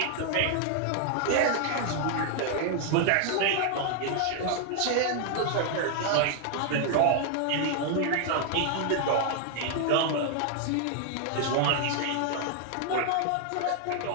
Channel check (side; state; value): both; different; correlation 0.00